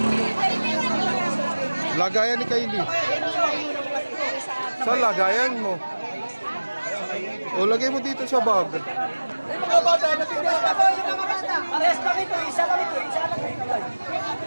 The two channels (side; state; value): both; inverted; correlation -1.00